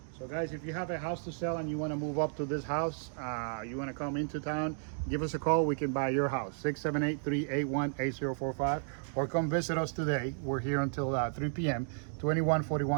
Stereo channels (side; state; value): left; silent; digital silence